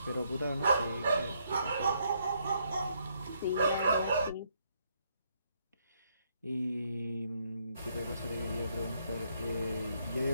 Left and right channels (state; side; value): inverted; both; correlation -0.73